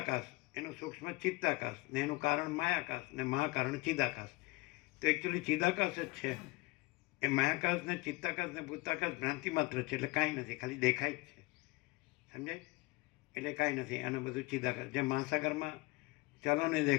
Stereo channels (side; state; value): right; quieter; 24.0 dB